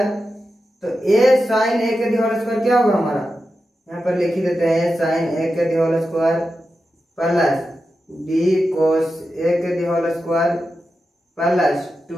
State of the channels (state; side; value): normal; both; correlation 0.90